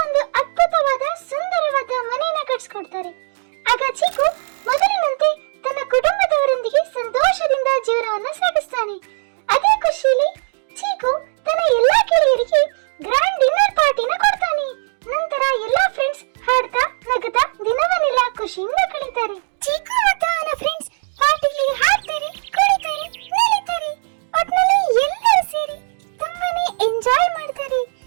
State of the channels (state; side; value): silent; left; digital silence